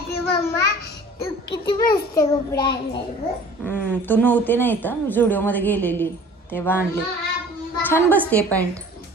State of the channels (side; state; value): both; normal; correlation 0.46